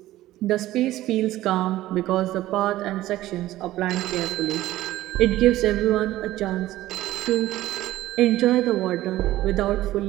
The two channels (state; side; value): quieter; left; 15.4 dB